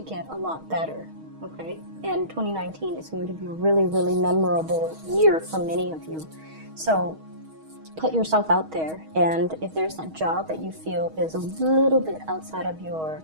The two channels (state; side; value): late; left; 6.3 ms